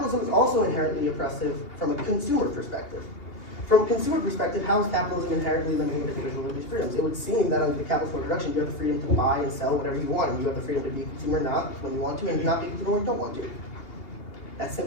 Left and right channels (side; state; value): right; late; 2.8 ms